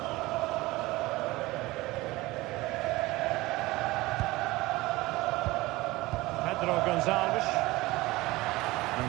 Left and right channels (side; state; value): left; quieter; 19.9 dB